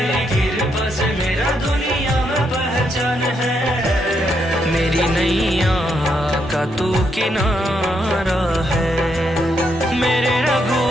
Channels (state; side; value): normal; both; correlation 0.78